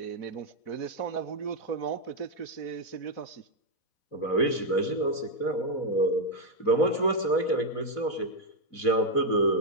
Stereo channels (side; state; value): right; late; 4.1 ms